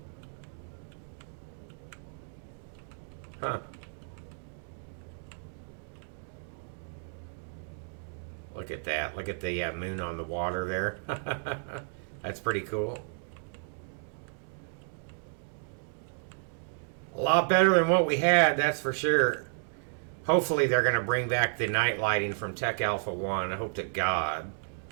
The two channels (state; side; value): silent; left; digital silence